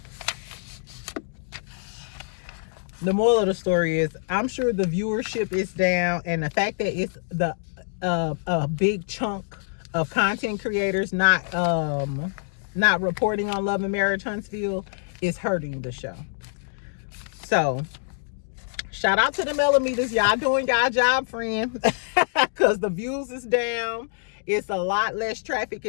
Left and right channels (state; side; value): silent; right; digital silence